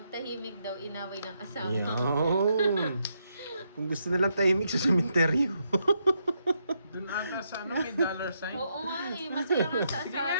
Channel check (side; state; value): both; inverted; correlation -0.79